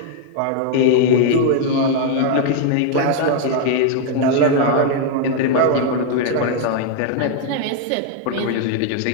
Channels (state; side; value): different; both; correlation 0.00